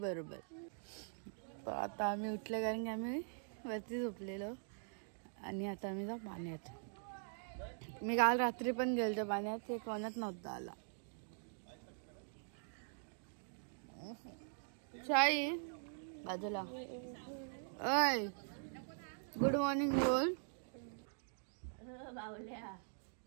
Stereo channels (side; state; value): left; silent; digital silence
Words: बरोबर. तर आता आम्ही उठले कारण की आम्ही वरती झोपलेलो आणि आता आम्ही जाऊ पाण्यात. मी काल रात्री पण गेलतो पाण्यात, ते कोणाच नव्हता आला. शाई बाजूला. ओय गुड मॉर्निंग बोल. बावल्या.